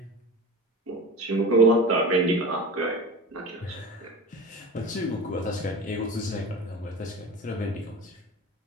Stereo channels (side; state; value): both; normal; correlation 0.33